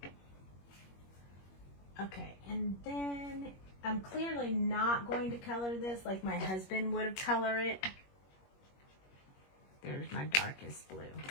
Okay, and then I'm clearly not going to color this like my husband would have colored it. There's my darkest blue.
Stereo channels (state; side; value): late; right; 21 ms